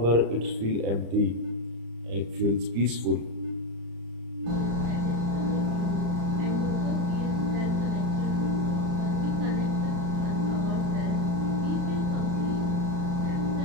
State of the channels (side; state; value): left; late; 35 ms